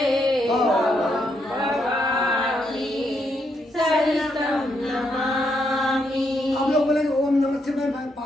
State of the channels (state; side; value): normal; both; correlation 0.77